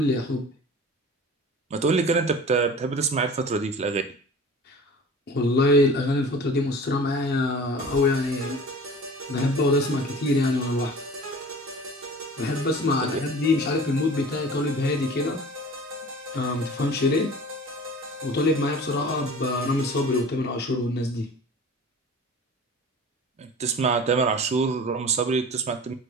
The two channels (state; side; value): normal; both; correlation 0.41